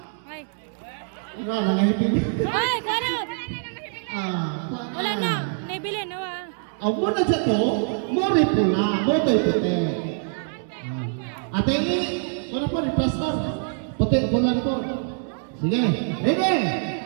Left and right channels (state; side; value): silent; left; 62 dB below the other